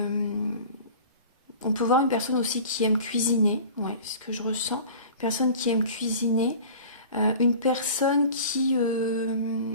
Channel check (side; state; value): both; inverted; correlation -0.41